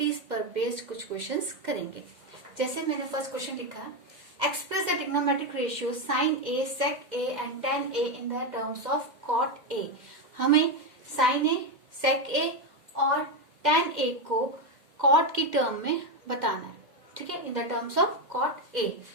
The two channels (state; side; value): late; left; 2.1 ms